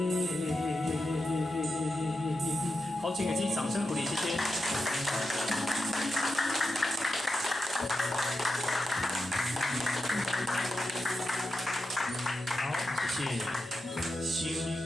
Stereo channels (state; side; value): normal; both; correlation 0.88